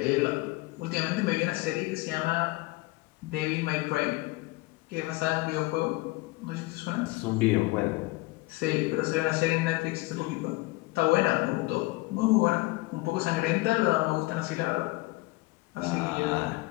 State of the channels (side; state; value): right; quieter; 22.0 dB